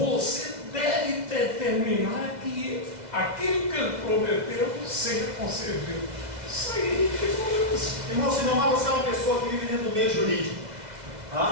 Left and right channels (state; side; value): late; left; 2.0 ms